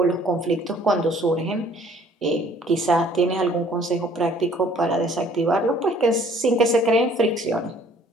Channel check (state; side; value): normal; both; correlation 0.57